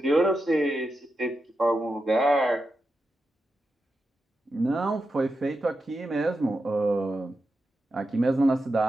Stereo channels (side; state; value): both; normal; correlation 0.88